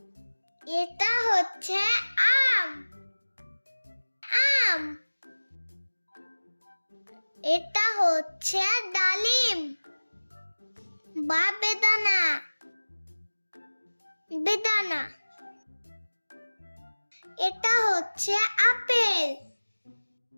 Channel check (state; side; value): inverted; both; correlation -1.00